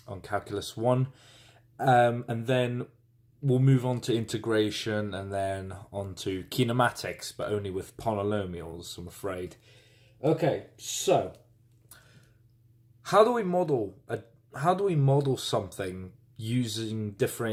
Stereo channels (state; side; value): identical; both; correlation 1.00